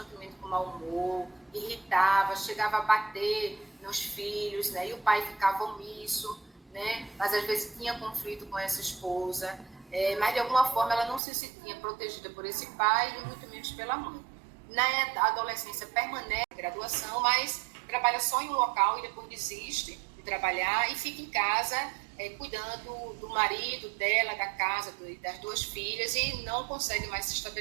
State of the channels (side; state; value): left; drops out; at 11.2 s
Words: com mau humor, irritava, chegava a bater nos filhos, né? E o pai ficava omisso, né? Mas às vezes tinha conflito com essa esposa, mas de alguma forma ela não se sentia protegida por esse pai e muito menos pela mãe. Na adolescência permanece na graduação, mas trabalha só em um local e depois desiste de trabalhar e fica em casa cuidando do marido, dela, da casa, das duas filhas, e não consegue mais se